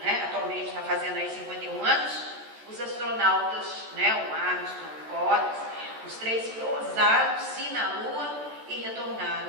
né, atualmente está fazendo aí 51 anos, os astronautas, né, o Armstrong, o Collins, os 3 pousaram-se na Lua e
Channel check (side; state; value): left; late; 14 ms